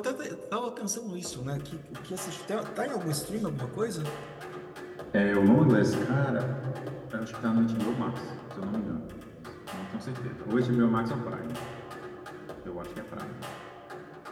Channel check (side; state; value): both; identical; correlation 1.00